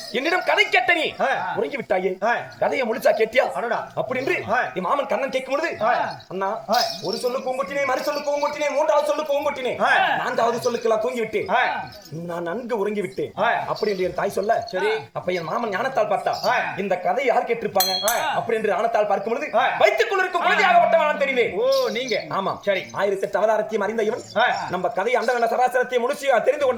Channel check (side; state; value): both; identical; correlation 1.00